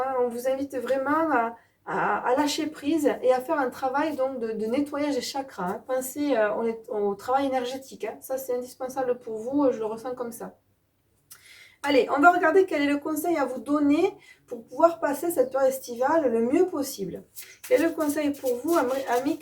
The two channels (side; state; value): both; identical; correlation 1.00